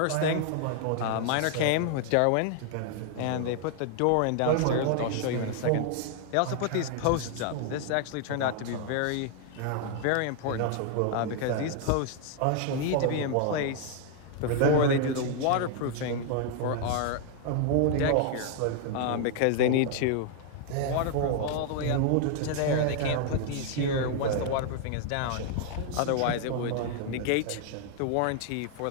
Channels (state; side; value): different; both; correlation 0.00